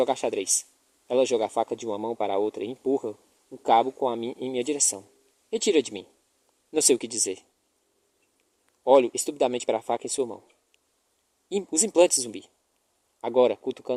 xadrez. Ela joga a faca de uma mão para a outra e empurra o cabo em minha direção. Retira de mim. Não sei o que dizer. Olho estupidamente para a faca em sua mão. Os implantes, zumbi. Agora,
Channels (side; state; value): both; identical; correlation 1.00